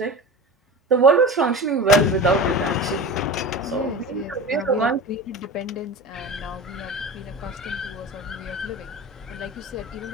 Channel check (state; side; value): normal; both; correlation 0.31